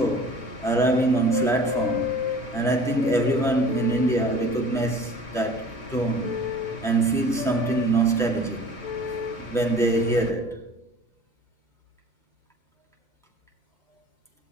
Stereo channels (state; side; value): normal; both; correlation 0.46